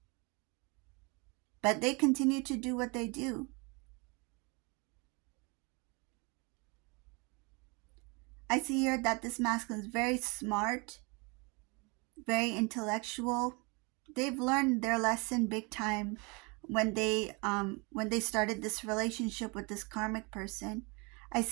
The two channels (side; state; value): left; quieter; 29.6 dB